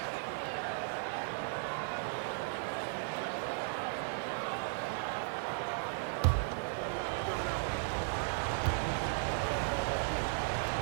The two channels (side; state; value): left; silent; digital silence